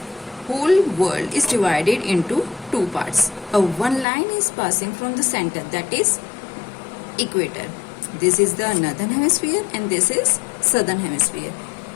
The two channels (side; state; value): right; drops out; at 4.0 s